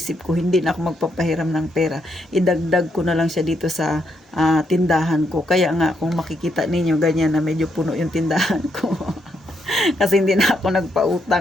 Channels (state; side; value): normal; both; correlation 0.77